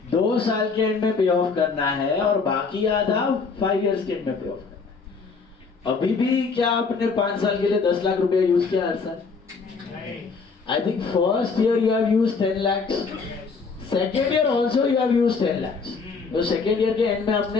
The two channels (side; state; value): right; quieter; 4.8 dB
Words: 2 साल के एंड में पे ऑफ करना है और बाकी आधा 5 इयर्स के एंड में पे ऑफ करना है. अभी भी क्या आपने 5 साल के लिए 10 लाख रुपया यूज किया हर साल? I think first year you have used 10 lakh, second year also you have used 10 lakh. तो सेकेंड ईयर के एंड में